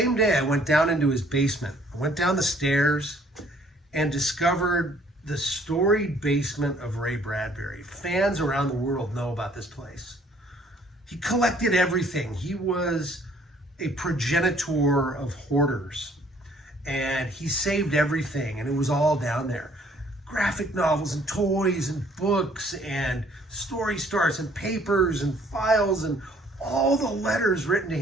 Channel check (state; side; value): normal; both; correlation 0.60